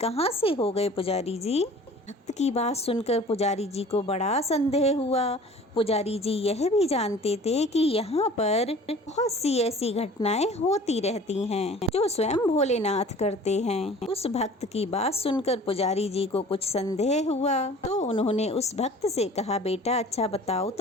से हो गए पुजारी जी? भक्त की बात सुनकर पुजारी जी को बड़ा संदेह हुआ। पुजारी जी यह भी जानते थे कि यहाँ पर बहुत सी ऐसी घटनाएं होती रहती हैं जो स्वयं भोलेनाथ करते हैं। उस भक्त की बात सुनकर पुजारी जी को कुछ संदेह हुआ, तो उन्होंने उस भक्त से कहा, बेटा अच्छा बताओ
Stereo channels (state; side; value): normal; both; correlation 0.46